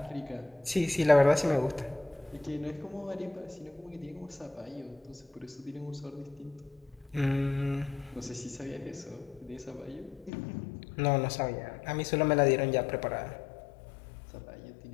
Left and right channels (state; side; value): drops out; right; at 10.3 s